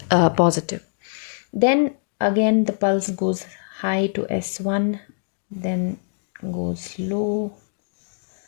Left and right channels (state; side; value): silent; right; digital silence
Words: positive. Then again the pulse goes high to S1, then goes low,